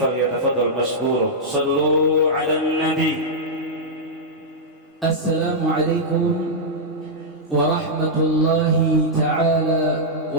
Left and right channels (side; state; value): both; normal; correlation -0.08